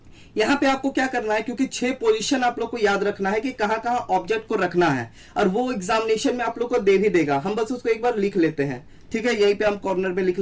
यहां पे आपको क्या करना है, क्योंकि 6 पोजीशन आप लोग को याद रखना है कि कहां कहां ऑब्जेक्ट को रखना है, और वो एग्जामिनेशन में आप लोग को दे भी देगा। हम बस उसको एक बार लिख लेते हैं, ठीक है। यहीं पे हम कॉर्नर में लिख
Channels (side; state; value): both; identical; correlation 1.00